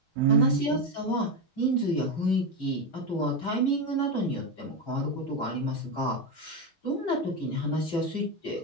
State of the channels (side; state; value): both; normal; correlation 0.11